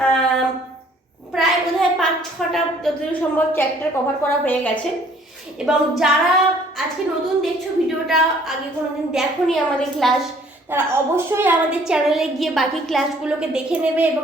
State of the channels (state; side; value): normal; both; correlation 0.58